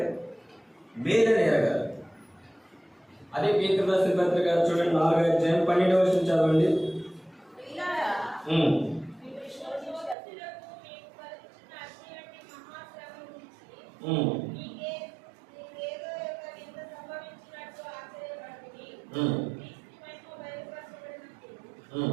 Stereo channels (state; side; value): drops out; left; at 10.2 s